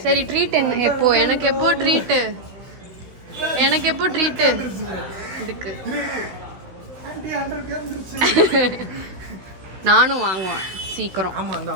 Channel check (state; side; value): late; left; 16 ms